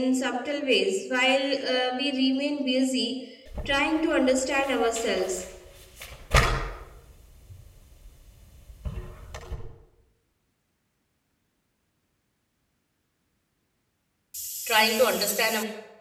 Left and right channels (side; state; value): both; identical; correlation 1.00